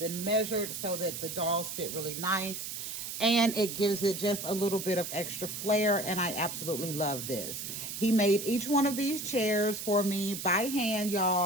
measured so that the dolls sit really nice, and it gives it just a little bit of extra flair, and I absolutely love this. He made each one of these chairs for me by hand,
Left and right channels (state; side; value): noise; right; hiss, 6 dB below the sound